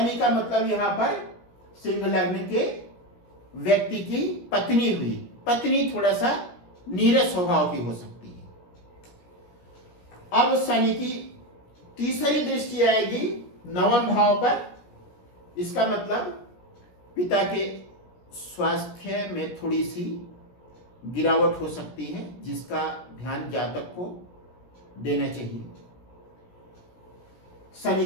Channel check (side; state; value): right; late; 17 ms